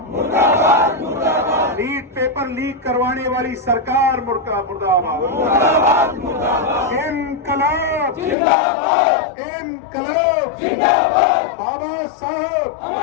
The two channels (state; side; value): drops out; right; at 8.3 s